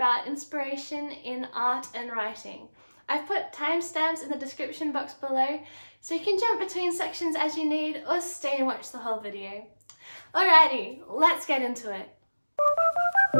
inspiration in art and writing. I've put timestamps in the description box below, so you can jump between sections as you need or stay and watch the whole video. Alrighty, let's get into it.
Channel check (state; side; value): inverted; both; correlation -1.00